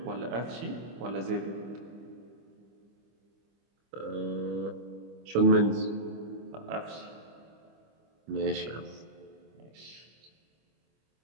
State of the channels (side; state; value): left; late; 25 ms